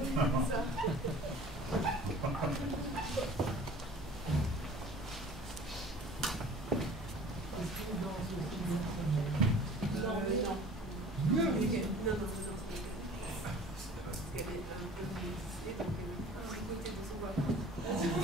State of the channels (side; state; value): both; normal; correlation 0.46